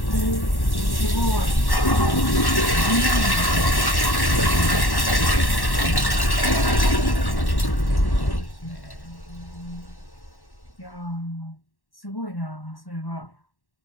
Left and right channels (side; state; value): right; late; 1.1 ms